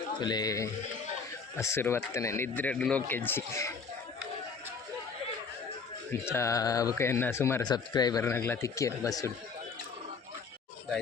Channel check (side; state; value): right; quieter; 5.2 dB